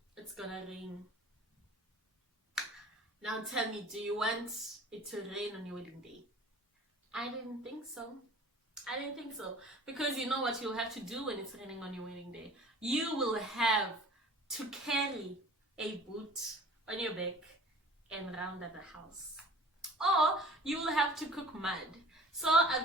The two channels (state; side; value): normal; both; correlation 0.47